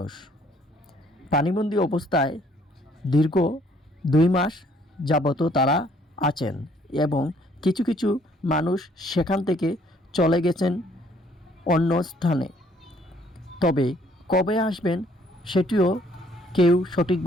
পানিবন্দী অবস্থায় দীর্ঘ 2 মাস যাবত তারা আছেন এবং কিছু কিছু মানুষ সেখান থেকে চলে গেছেন অন্য স্থানে। তবে কবে আসবেন সেটিও কেউ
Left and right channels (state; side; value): normal; both; correlation 0.63